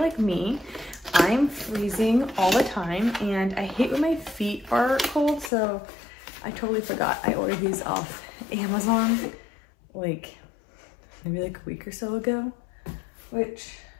me, I'm freezing all the time and I hate when my feet are cold, so I totally forgot I ordered these off Amazon like maybe like a week or so ago, which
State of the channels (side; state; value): right; drops out; at 5.5 s